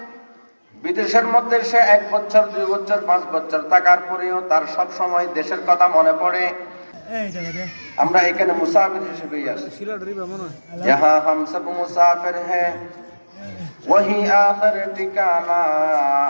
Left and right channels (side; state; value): both; inverted; correlation -1.00